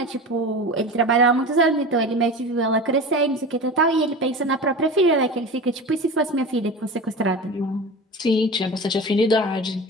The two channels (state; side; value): normal; both; correlation 0.31